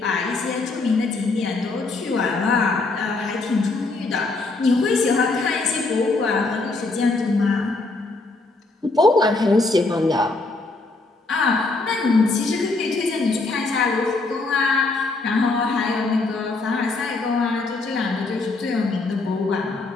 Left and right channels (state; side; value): quieter; right; 3.4 dB